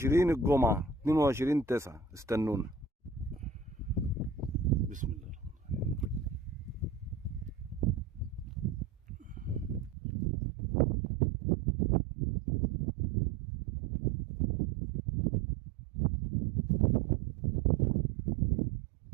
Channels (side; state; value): left; drops out; at 10.0 s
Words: الجمعه 22/9. استنونا. بسم الله.